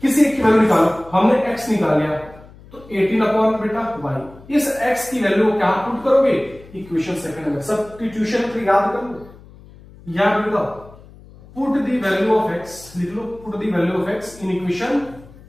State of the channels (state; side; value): noise; left; hum, 22 dB below the sound